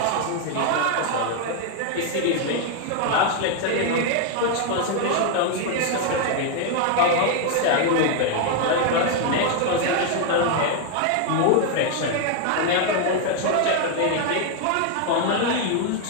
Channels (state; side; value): different; both; correlation 0.01